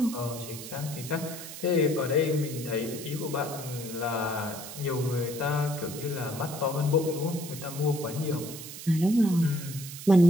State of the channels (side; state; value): right; noise; hiss, 11 dB below the sound